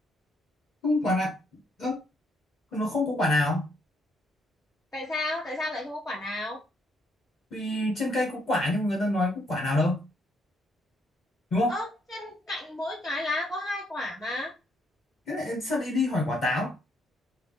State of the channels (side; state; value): both; normal; correlation 0.72